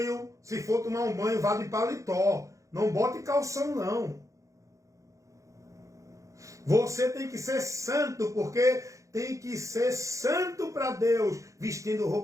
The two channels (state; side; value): late; left; 0.15 ms